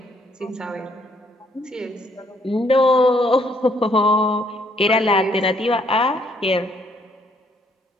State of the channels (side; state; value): both; normal; correlation 0.68